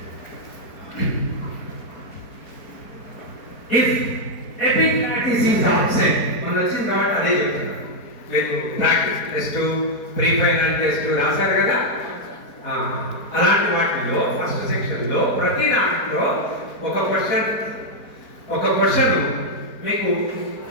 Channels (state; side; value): late; right; 4.5 ms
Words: If epiglottis is absent, మనం వచ్చిన తర్వాత అదే చెప్తున్నా. మీరు practice test, pre final test రాశారు కదా. అలాంటి వాటిలో ఫస్ట్ సెక్షన్లో ప్రతి దాంట్లో ఒక క్వశ్చన్ మీకు